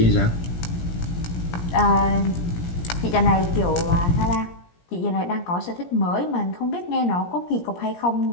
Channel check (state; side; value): late; right; 17 ms